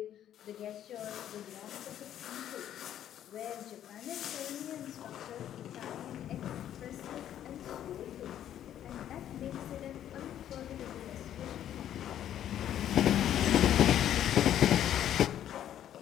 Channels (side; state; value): right; quieter; 10.9 dB